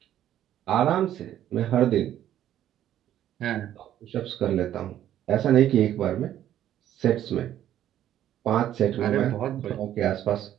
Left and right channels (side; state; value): left; quieter; 11.6 dB